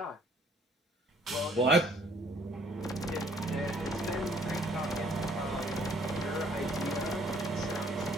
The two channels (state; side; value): normal; both; correlation 0.61